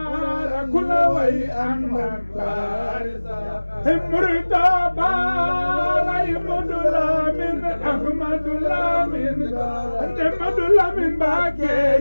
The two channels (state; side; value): inverted; both; correlation -1.00